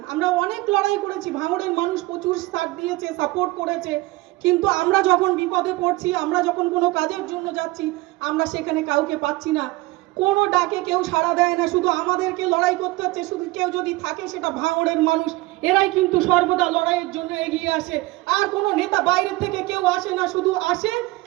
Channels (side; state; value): left; quieter; 20.3 dB